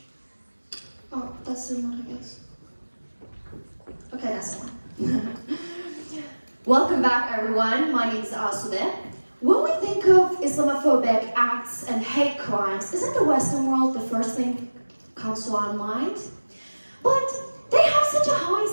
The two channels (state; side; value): inverted; both; correlation -1.00